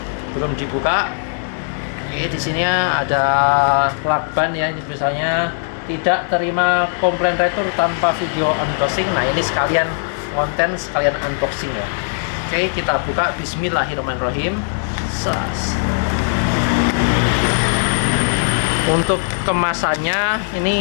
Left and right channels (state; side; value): silent; right; digital silence